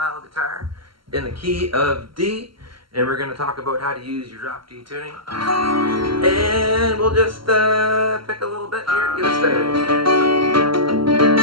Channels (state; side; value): late; left; 0.73 ms